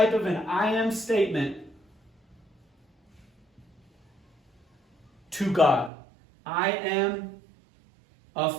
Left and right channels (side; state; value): left; drops out; at 5.9 s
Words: of an I am statement to God. I am